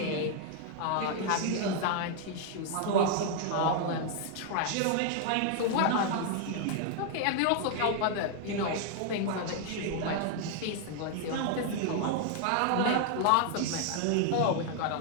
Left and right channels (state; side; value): different; both; correlation 0.00